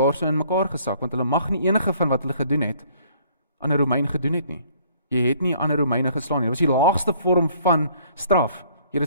so in mekaar gesak, want hulle mag nie enige van wat hulle gedoen het, aan 'n Romein gedoen het nie. Jy het nie aan 'n Romeine geslaan nie. Dit was die laagste vorm van straf. Jy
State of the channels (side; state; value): both; inverted; correlation -0.59